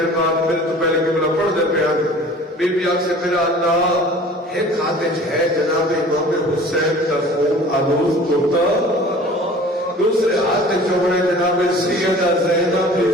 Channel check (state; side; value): normal; both; correlation 0.45